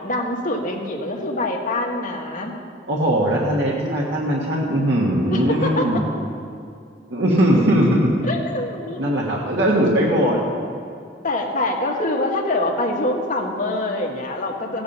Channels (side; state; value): both; normal; correlation 0.40